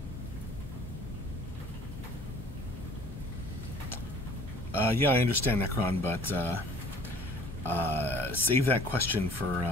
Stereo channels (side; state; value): both; normal; correlation 0.52